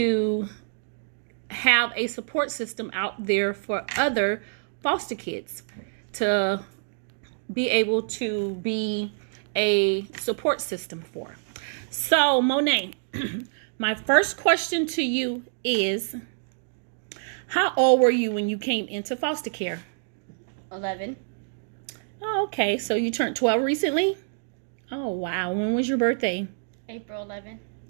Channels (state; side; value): silent; left; digital silence